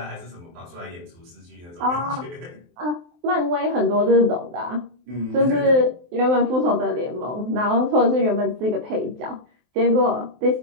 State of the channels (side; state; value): left; late; 23 ms